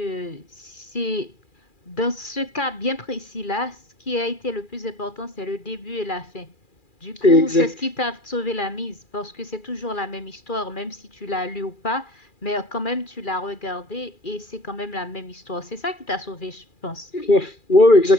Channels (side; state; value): right; late; 2.4 ms